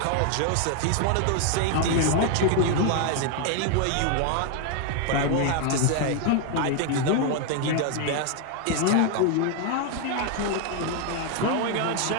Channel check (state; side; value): different; both; correlation 0.01